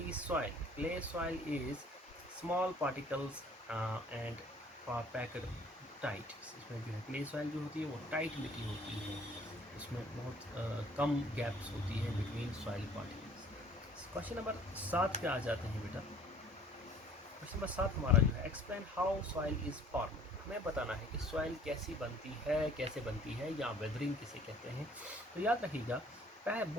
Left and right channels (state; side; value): normal; both; correlation 0.54